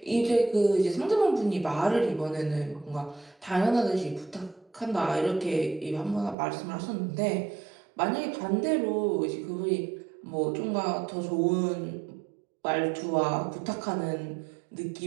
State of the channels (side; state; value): left; drops out; at 6.4 s